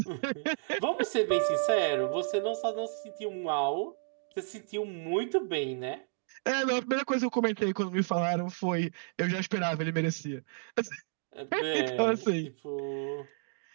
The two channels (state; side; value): silent; left; digital silence